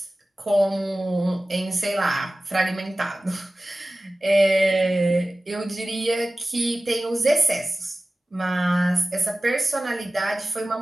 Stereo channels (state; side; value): normal; both; correlation 0.97